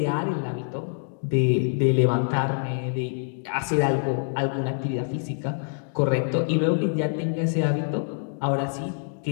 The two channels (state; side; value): silent; right; digital silence